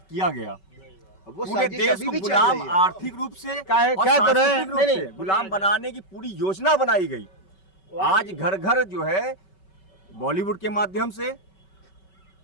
किया गया। वो पूरे देश को गुलाम, आर्थिक रूप से और सांस्कृतिक रूप से गुलाम बनाने की पूरी योजना बनाई गई। आज घर घर जो है बॉलीवुड के माध्यम से,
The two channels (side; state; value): right; late; 5.3 ms